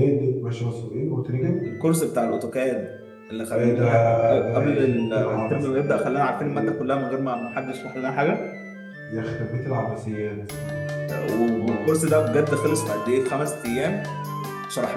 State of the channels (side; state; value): both; identical; correlation 1.00